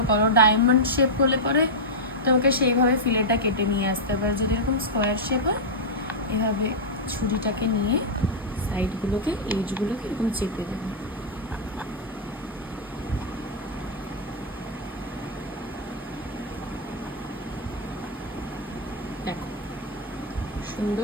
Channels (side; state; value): both; normal; correlation -0.07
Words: করো, ডায়মন্ড শেপ হলে পরে তোমাকে সেইভাবে ফিলেটটা কেটে নিয়ে আসতে পারে। যদি এরকম স্কোয়ার শেপ হয়, এভাবে ছুরিটাকে নিয়ে সাইডগুলোকে, এজগুলোকে এরকম চেপে দেবে। দেখো